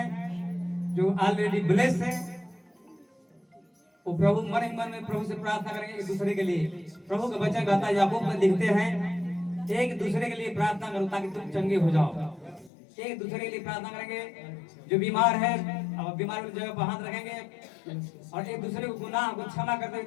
जो ऑलरेडी ब्लेस्ड हैं, वो प्रभु मन ही मन में प्रभु से प्रार्थना करेंगे एक दूसरे के लिए। प्रभु का वचन कहता है, याकूब में लिखते हैं, एक दूसरे के लिए प्रार्थना करो ताकि तुम चंगे हो जाओ। एक दूसरे के लिए प्रार्थना करेंगे। जो बीमार है अब बीमार वाली जगह पर हाथ रखेंगे और एक दूसरे को गुनाह को क्षमा कर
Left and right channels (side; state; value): right; drops out; at 12.7 s